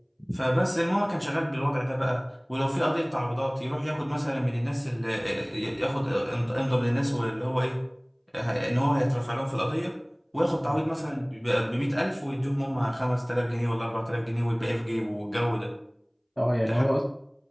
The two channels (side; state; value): both; identical; correlation 1.00